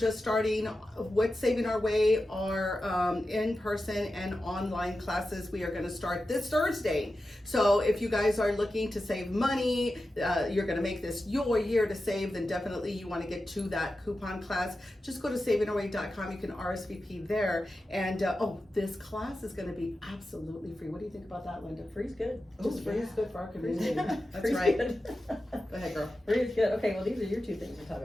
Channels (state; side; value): normal; both; correlation 0.92